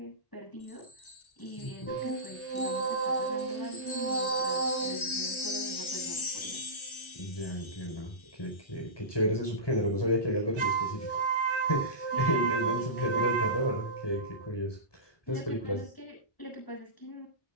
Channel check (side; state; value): right; late; 1.3 ms